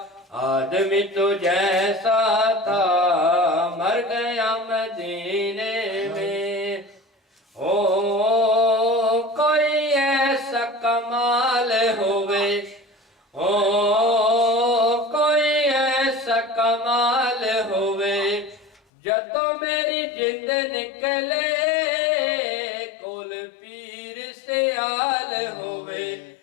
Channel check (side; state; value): right; drops out; at 18.8 s